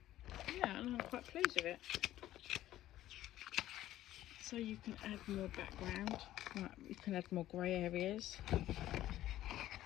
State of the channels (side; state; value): right; quieter; 13.8 dB